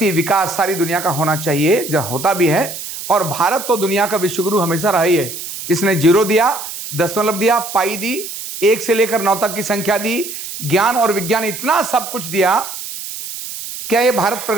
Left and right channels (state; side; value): noise; right; hiss, 9 dB below the sound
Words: विकास सारी दुनिया का होना चाहिए, जो होता भी है। और भारत तो दुनिया का विश्वगुरु हमेशा रहा ही है। इसने जीरो दिया, दशमलव दिया, पाई दी, 1 से लेकर 9 तक की संख्या दी, ज्ञान और विज्ञान, इतना सब कुछ दिया। क्या यह भारत